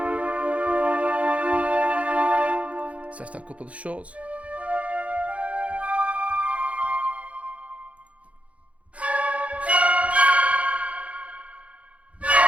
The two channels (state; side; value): late; left; 0.064 ms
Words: Set a couple of shorts.